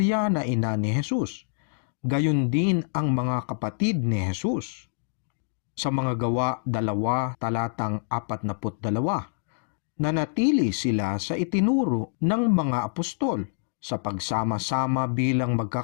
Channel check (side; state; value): right; silent; digital silence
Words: na ina ni Jesus. Gayon din ang mga kapatid ni Jesus. Sa mga gawa 2:42, nanatili sila sa itinuro ng mga apostol sa pagsama-sama bilang